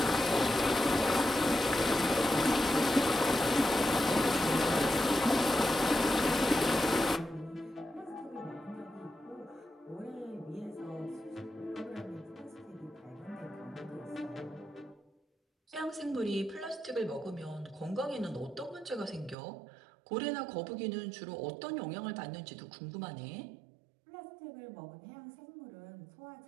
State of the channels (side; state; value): left; drops out; at 19.4 s